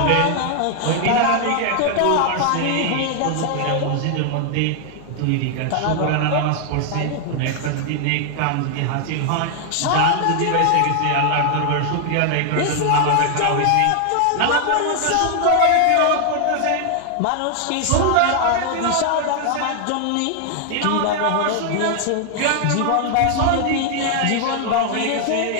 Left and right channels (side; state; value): both; different; correlation 0.00